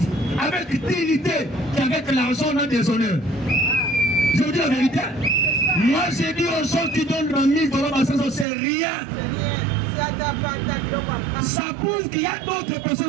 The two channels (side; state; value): left; drops out; at 8.5 s